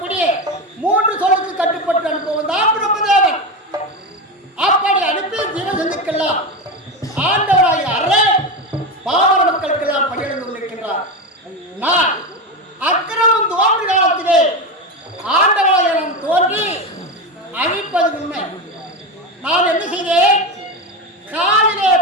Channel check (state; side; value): normal; both; correlation 0.17